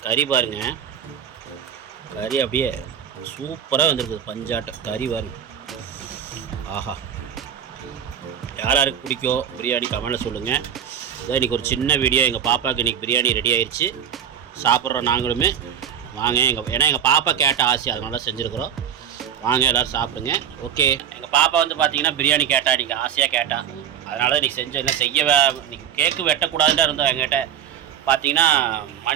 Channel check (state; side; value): quieter; left; 9.0 dB